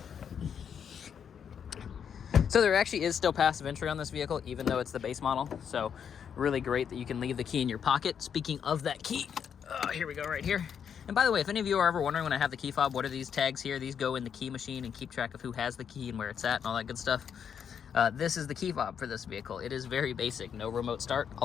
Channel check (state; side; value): quieter; right; 7.7 dB